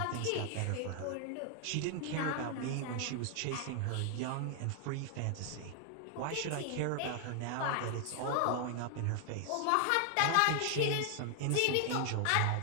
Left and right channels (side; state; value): both; different; correlation 0.00